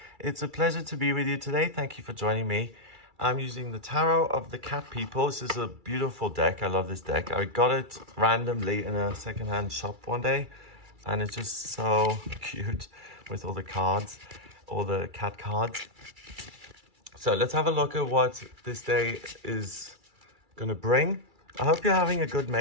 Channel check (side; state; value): left; late; 2.3 ms